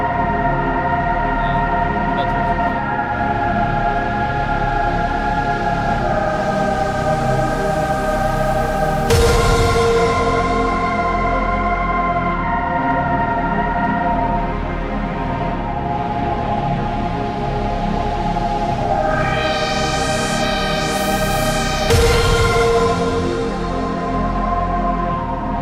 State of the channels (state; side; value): identical; both; correlation 1.00